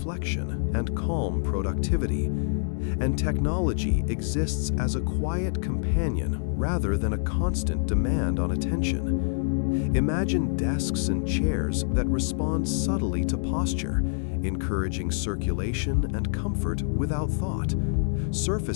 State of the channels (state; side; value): silent; right; digital silence